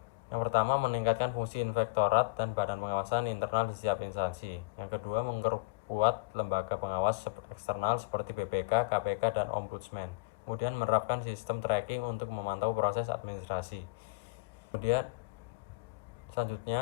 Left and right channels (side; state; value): right; quieter; 25.8 dB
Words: Yang pertama, meningkatkan fungsi inspektorat dan badan pengawasan internal di setiap instansi. Yang kedua, memperkuat lembaga pengawas eksternal seperti BPK, KPK, dan Ombudsman. Kemudian menerapkan sistem tracking untuk memantau proses administrasi. Kemudian